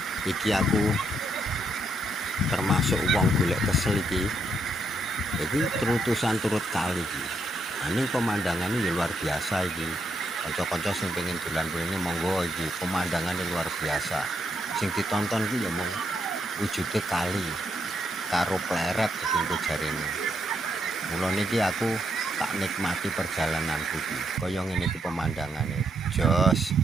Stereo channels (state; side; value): normal; both; correlation 0.77